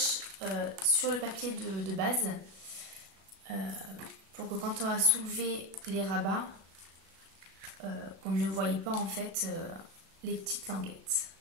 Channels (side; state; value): left; late; 36 ms